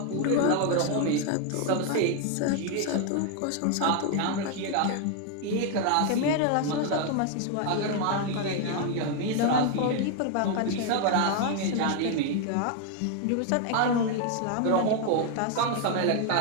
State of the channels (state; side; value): different; both; correlation 0.01